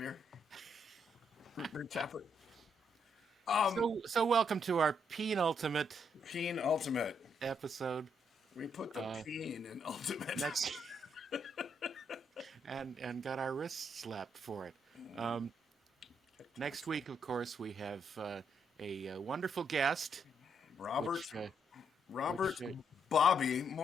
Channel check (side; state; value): both; normal; correlation 0.75